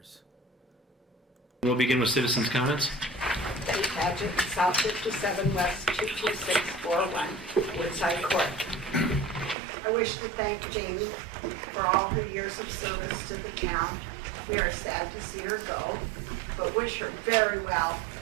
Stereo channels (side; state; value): left; drops out; at 9.6 s